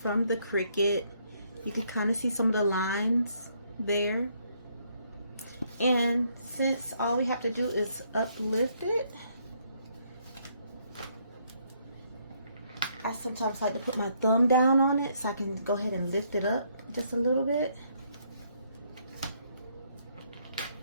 from the Cricut. You can kind of see some of the lines there. And since all we have to do is uplift it, I sometimes like to put my thumb down on it so I can go ahead and lift it up just a little bit.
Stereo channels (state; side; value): inverted; both; correlation -0.70